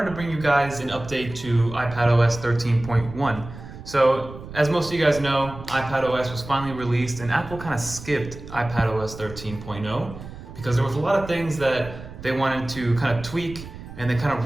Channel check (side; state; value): right; noise; rumble, 13 dB below the sound